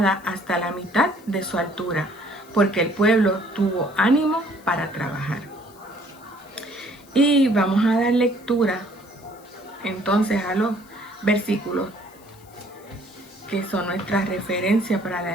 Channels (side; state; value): left; noise; hiss, 26 dB below the sound